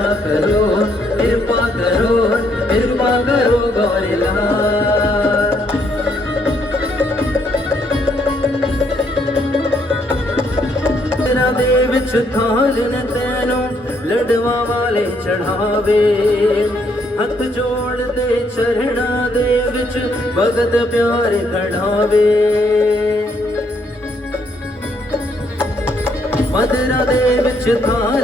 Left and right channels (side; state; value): both; normal; correlation 0.72